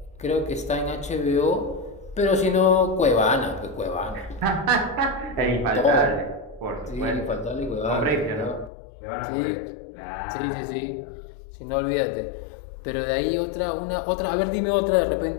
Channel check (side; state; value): right; drops out; at 8.7 s